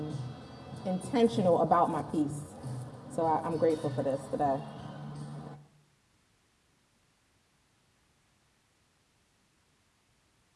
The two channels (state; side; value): identical; both; correlation 1.00